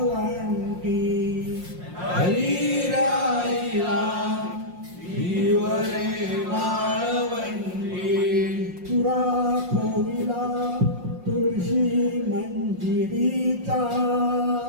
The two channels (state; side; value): late; left; 5.6 ms